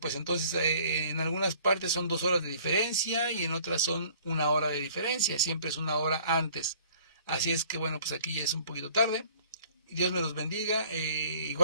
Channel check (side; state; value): both; inverted; correlation -0.54